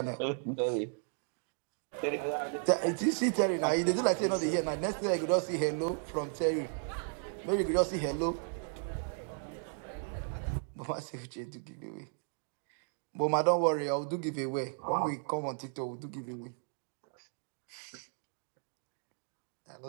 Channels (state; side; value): silent; left; 55 dB below the other